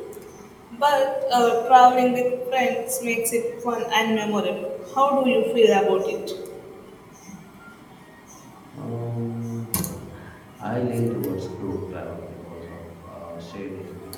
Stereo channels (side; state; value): both; identical; correlation 1.00